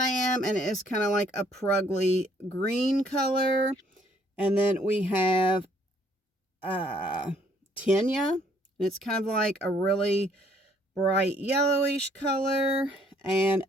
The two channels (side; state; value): both; normal; correlation 0.64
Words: and it is kind of like a prugly green color. And then we have Tanya, and it's kind of like a really bright yellowish color. And